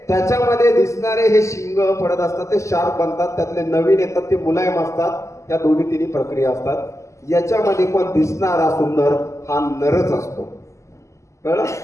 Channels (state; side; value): late; right; 0.14 ms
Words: त्याच्यामध्ये दिसणारे हे शिंग पडत असतात, ते शार्प बनतात. त्यातले नवीन येतात ते मुलायम असतात. या 2-3 प्रक्रिया असतात. याच्यामध्ये पण दिसणारा सुंदर हा नरच असतो. कळलं?